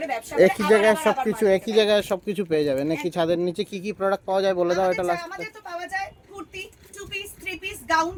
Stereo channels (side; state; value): both; identical; correlation 1.00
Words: ব্যবসা করে একই জায়গায় সবকিছু, একই জায়গায় সবকিছু পেয়ে যাবে নাকি? ছাদের নিচে কি কি প্রোডাক্ট পাওয়া যায় বলে দাও এটা লাস্ট। আমাদের তো পাওয়া যায় kurti, 2 piece, 3 piece, gown,